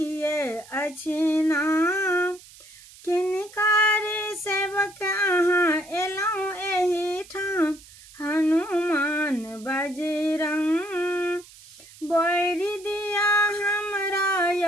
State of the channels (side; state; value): right; noise; hiss, 21 dB below the sound